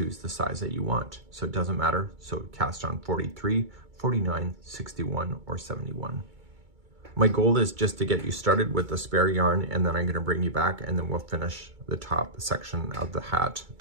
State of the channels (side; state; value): left; late; 2.2 ms